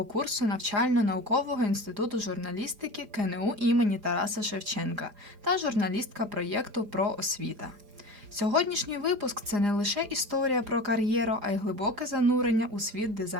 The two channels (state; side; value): late; left; 4.9 ms